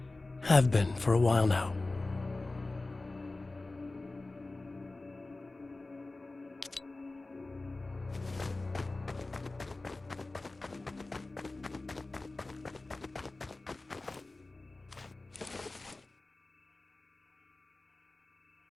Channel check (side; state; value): right; quieter; 3.1 dB